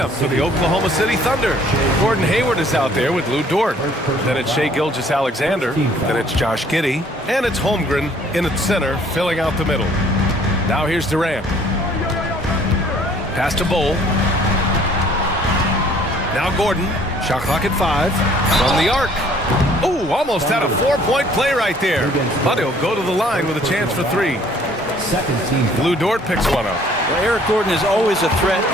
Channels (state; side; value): normal; both; correlation 0.58